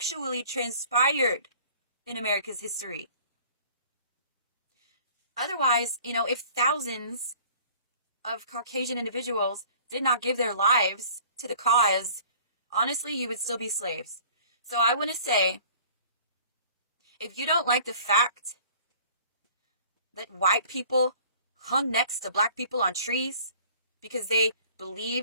transpired in America's history. Otherwise, if thousands of Caucasian individuals did not give their lives to the cause, honestly, you would still be slaves. So I want to say, if you don't like the fact that white people hung next to black people on trees because they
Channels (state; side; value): inverted; both; correlation -0.50